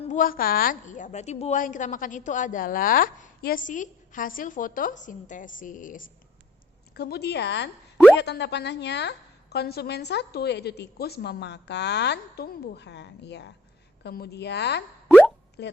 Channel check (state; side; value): normal; both; correlation 0.61